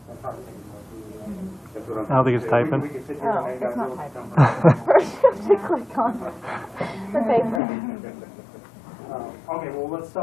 I don't think it's typing. Oh, it's not typing. First you have to click on the paper. Okay, well, let's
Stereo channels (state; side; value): drops out; right; at 7.6 s